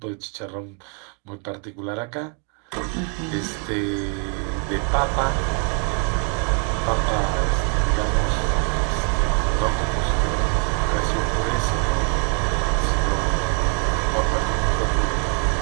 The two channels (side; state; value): left; quieter; 36.6 dB